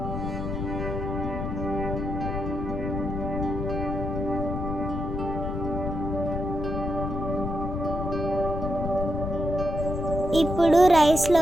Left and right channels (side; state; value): left; noise; rumble, 4 dB below the sound